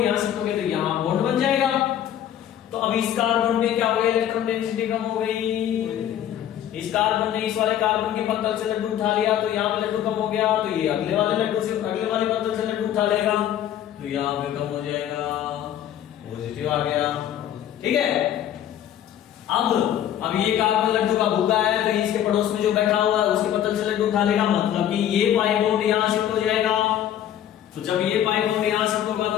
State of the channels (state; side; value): quieter; right; 10.8 dB